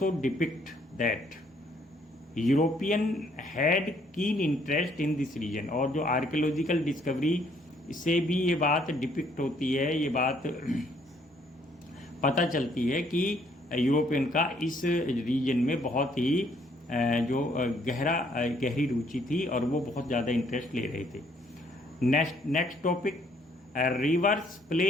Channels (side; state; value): both; normal; correlation 0.66